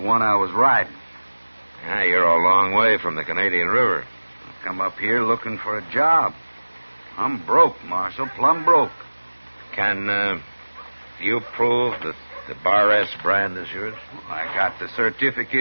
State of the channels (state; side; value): inverted; both; correlation -1.00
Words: I was riding. Yeah, you're a long way from the Canadian River. I come up here looking for a job. I'm broke, Marshal, plumb broke. Can you prove that the Bar S brand is yours? Well, I got the